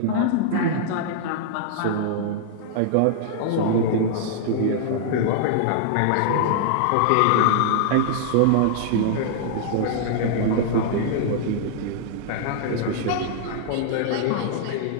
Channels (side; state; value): both; different; correlation -0.01